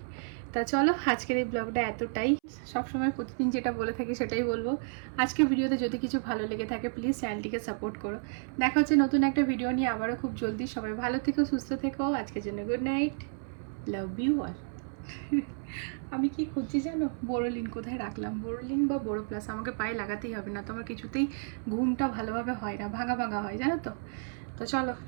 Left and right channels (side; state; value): left; silent; 57 dB below the other